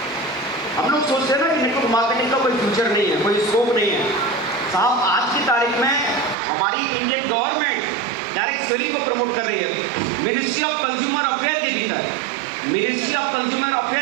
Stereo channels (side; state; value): left; drops out; at 6.4 s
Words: हम लोग सोचते हैं ना कि नेटवर्क मार्केटिंग का कोई फ्यूचर नहीं है, कोई स्कोप नहीं है। साहब आज की तारीख में हमारी इंडियन गवर्नमेंट डायरेक्ट सेलिंग को प्रमोट कर रही है। मिनिस्ट्री ऑफ कंज्यूमर अफेयर के भीतर, मिनिस्ट्री ऑफ कंज्यूमर